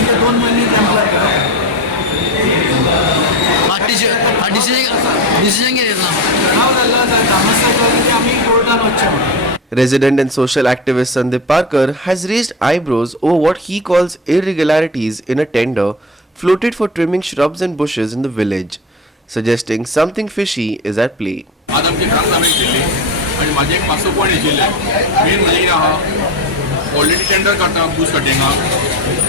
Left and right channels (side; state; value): both; normal; correlation 0.22